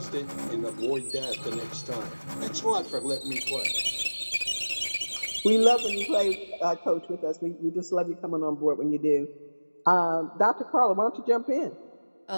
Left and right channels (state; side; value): inverted; both; correlation -1.00